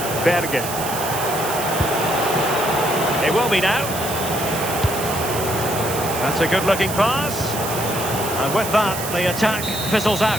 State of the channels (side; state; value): right; noise; hiss, 7 dB below the sound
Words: Bergen. It will be now. That's a good-looking pass. And with that, the attack fizzles